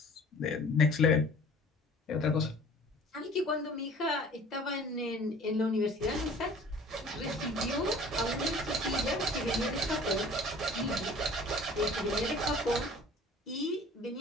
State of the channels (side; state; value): both; normal; correlation 0.48